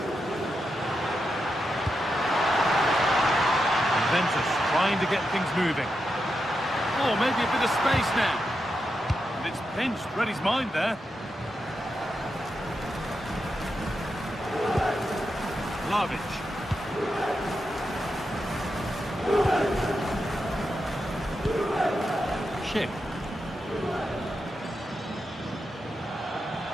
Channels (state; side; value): normal; both; correlation 0.87